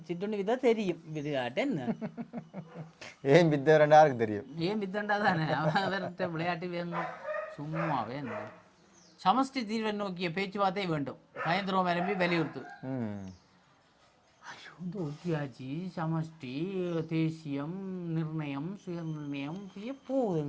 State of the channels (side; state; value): both; identical; correlation 1.00